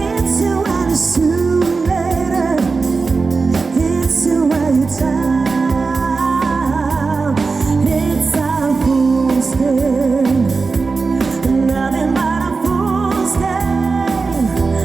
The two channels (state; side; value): quieter; left; 4.3 dB